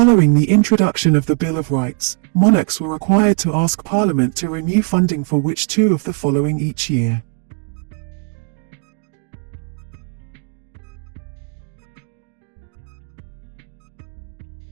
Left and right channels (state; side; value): quieter; left; 37.6 dB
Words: the introduction of the Bill of Rights, monarchs were required to ask Parliament to renew funding for which two of the following each year?